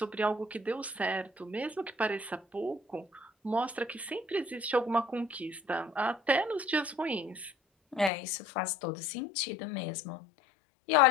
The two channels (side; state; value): right; drops out; at 8.1 s